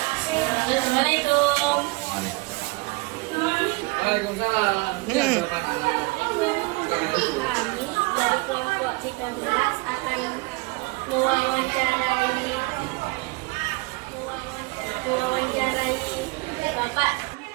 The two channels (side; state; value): left; quieter; 25.4 dB